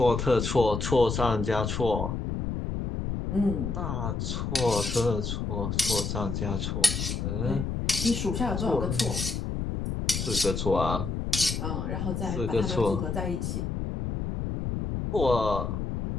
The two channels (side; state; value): left; noise; rumble, 2 dB below the sound